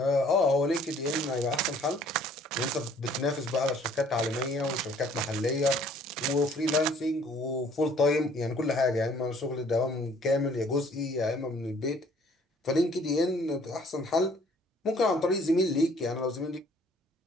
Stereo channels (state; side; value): normal; both; correlation 0.57